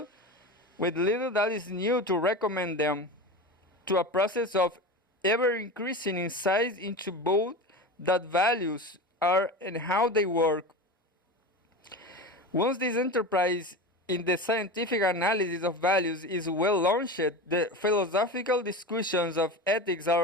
that is new to recommend them to a process of ever increasing insight into both that values are and how they work. Once this enterprise in the scientific analysis of values is well launched, the philosophical discussions of ethics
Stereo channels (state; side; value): normal; both; correlation 0.27